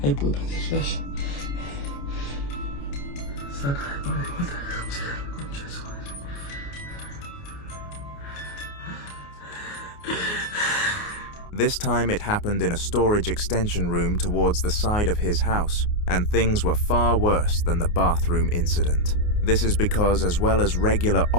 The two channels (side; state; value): right; late; 29 ms